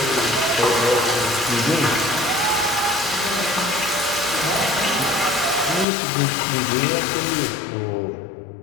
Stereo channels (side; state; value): right; drops out; at 5.9 s